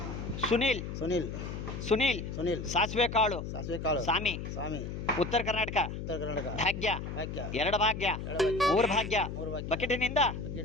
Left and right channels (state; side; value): noise; left; hum, 6 dB below the sound